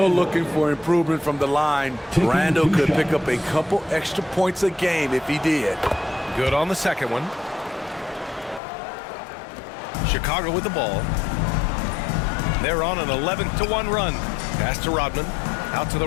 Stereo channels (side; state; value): right; drops out; at 8.6 s